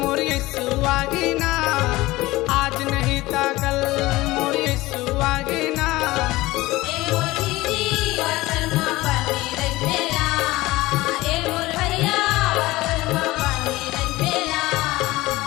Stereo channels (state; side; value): quieter; right; 19.1 dB